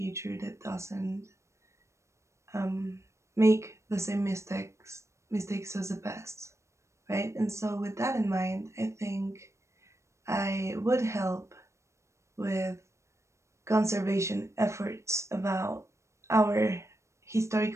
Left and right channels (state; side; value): late; left; 0.14 ms